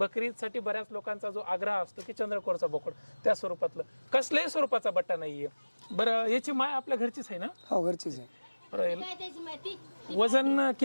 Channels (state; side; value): inverted; both; correlation -1.00